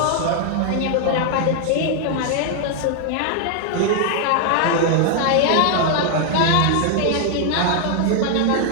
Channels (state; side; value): different; both; correlation 0.00